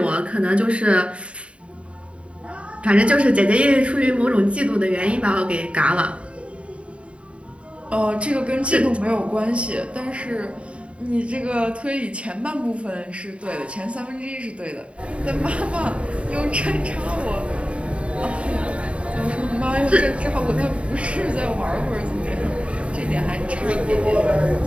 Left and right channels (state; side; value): late; left; 0.061 ms